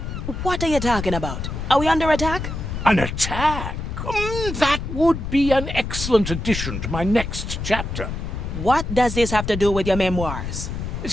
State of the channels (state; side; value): noise; left; rumble, 5 dB below the sound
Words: What are you talking about? Are we under attack? An attack? That would be an excellent addition to my next chapter. What does this have to do with your memoirs? You